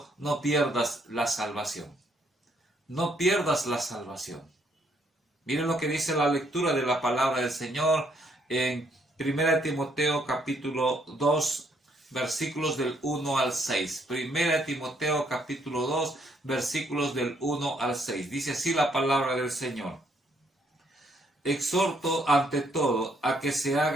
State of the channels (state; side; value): normal; both; correlation 0.70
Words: no pierdas la salvación. No pierdas la salvación. Miren lo que dice la lectura de la palabra del Señor en 1 Timoteo capítulo 2, versículos del 1 al 6. 1 Timoteo capítulo 2, versículos del 1 al 6. Dice así la palabra del Señor: exhorto ante todo a que se